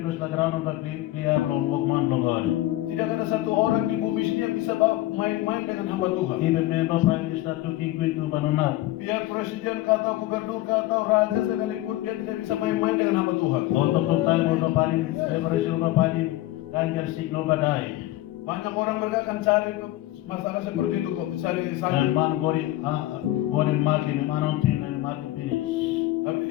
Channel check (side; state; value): right; quieter; 16.2 dB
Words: plus lagranon ka clear long walk man long God. Tidak ada satu orang di bumi sini yang bisa main-main dengan hamba Tuhan. Even member prime minister to king queen to banunat. Biar presiden kata gubernur kata raja sekalipun dia tidak bisa main-main dengan hamba Tuhan. Untuk tayo mo panin, separation pa panin, kanjer signo badai. Banyak orang mereka akan cari masalah seperti itu kok, cari And sakit. man gori makin manontin and makin finish.